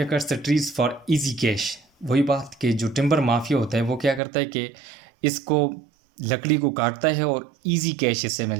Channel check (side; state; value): left; drops out; at 4.2 s